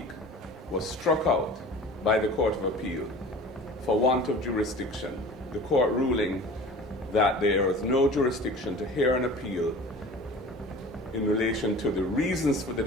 was struck out by the Court of Appeal for want of jurisdiction, the court ruling that there is no jurisdiction to hear an appeal in relation to the reasons for the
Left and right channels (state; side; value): normal; both; correlation 0.41